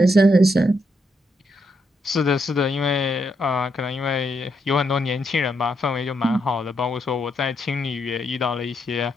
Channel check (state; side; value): normal; both; correlation 0.79